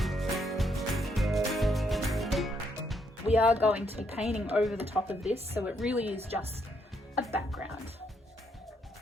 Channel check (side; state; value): both; normal; correlation 0.74